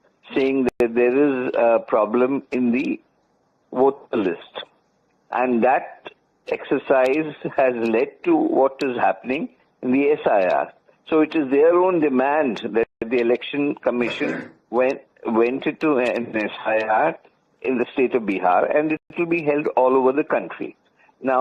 saying that there is a problem in the voter list. And that exercise has led to what is happening in the SIR. So it is their own demand that the Election Commission went into an SIR in the state of Bihar, and it will be held all over the country.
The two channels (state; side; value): identical; both; correlation 1.00